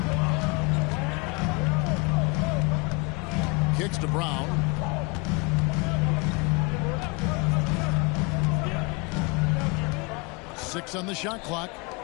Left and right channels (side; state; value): right; quieter; 29.9 dB